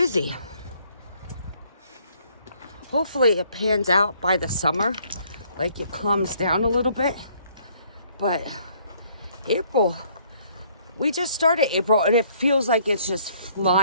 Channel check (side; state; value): both; inverted; correlation -0.64